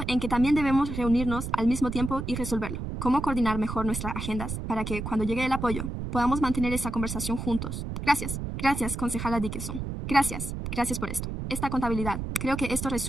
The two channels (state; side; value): noise; right; rumble, 5 dB below the sound